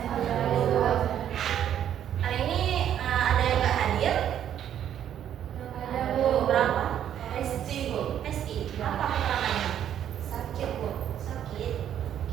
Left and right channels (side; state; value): left; quieter; 10.1 dB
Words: Hari ini ada yang nggak hadir? Ada, Bu. Berapa? Esti, Bu. Esti. Apa keterangannya? Sakit, Bu. Sakit.